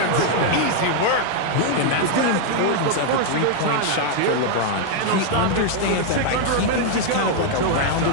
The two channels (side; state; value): both; different; correlation 0.00